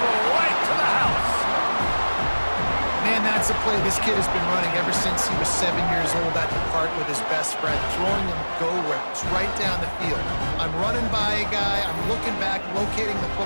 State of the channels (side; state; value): both; inverted; correlation -1.00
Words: right to the house. Man, that's a play this kid has been running ever since he was 7 years old at the park with his best friend, throwing him go routes right down the field. I'm running by a guy, I'm looking back, locating the